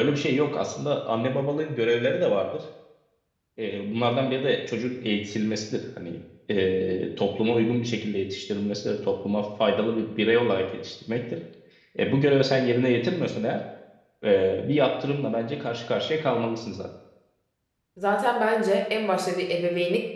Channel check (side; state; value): both; identical; correlation 1.00